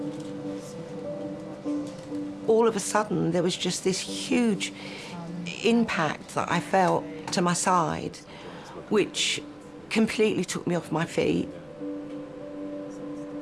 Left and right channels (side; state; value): right; noise; rumble, 30 dB below the sound